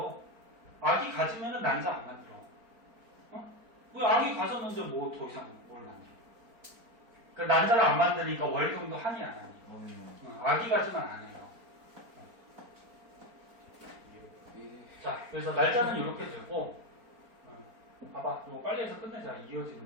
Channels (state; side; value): late; left; 4.4 ms